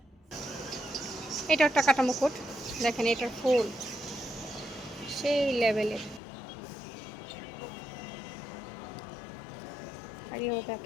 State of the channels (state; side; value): drops out; right; at 6.2 s